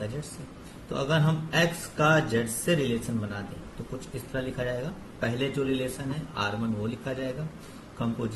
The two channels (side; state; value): both; identical; correlation 1.00